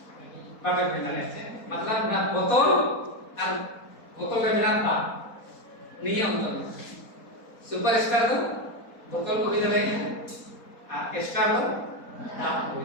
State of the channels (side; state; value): right; late; 4.1 ms